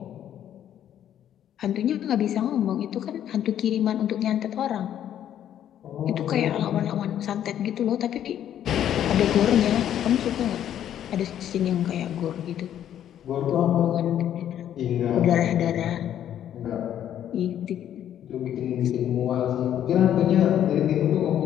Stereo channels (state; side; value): quieter; right; 10.6 dB